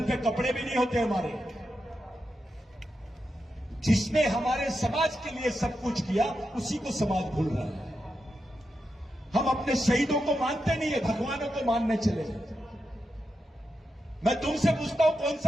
पे कपड़े भी नहीं होते हमारे। जिसने हमारे समाज के लिए सब कुछ किया उसी को समाज भूल रहा है। हम अपने शहीदों को मानते नहीं है, भगवानों को मानने चले। मैं तुमसे पूछता हूं, कौन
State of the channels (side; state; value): both; normal; correlation 0.87